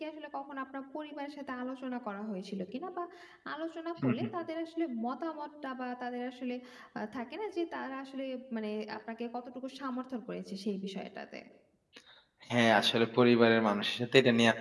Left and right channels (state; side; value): identical; both; correlation 1.00